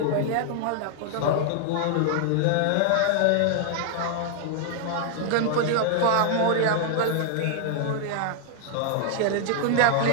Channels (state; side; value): different; both; correlation -0.01